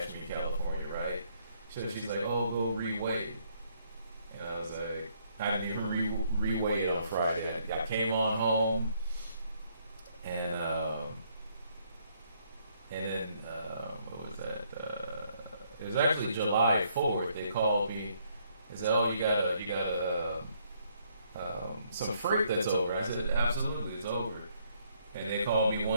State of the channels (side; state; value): both; inverted; correlation -0.70